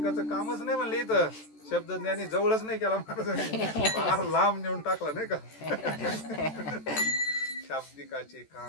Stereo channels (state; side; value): late; right; 14 ms